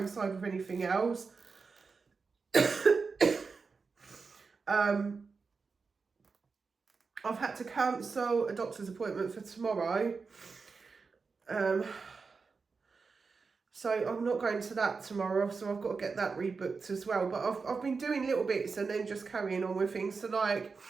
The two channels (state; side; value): quieter; left; 4.8 dB